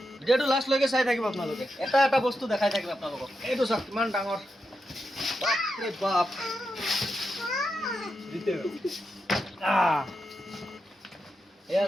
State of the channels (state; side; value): normal; both; correlation 0.87